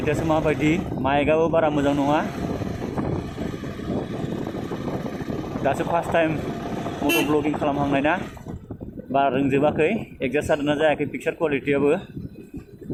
माबायदि? माइकआबो बारा मोजां नङा। दासो फार्स्ट टाइम मट' ब्लगिं खालामहांनाय ना, बारा रोंजोबाखै। एडजास्ट जादोंना जायाखै पिक्सार क्वालिटियाबो।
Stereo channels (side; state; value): both; identical; correlation 1.00